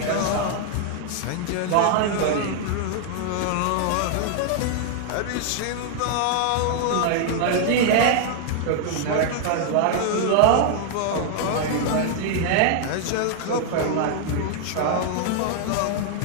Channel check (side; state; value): both; different; correlation 0.00